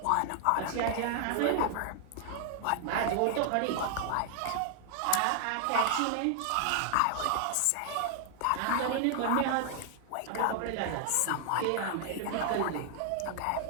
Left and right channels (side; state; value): both; different; correlation 0.00